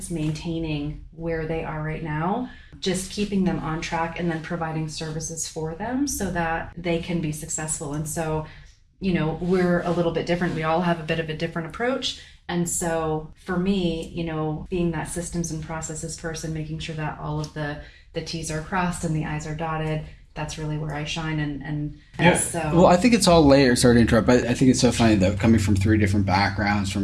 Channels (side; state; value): both; identical; correlation 1.00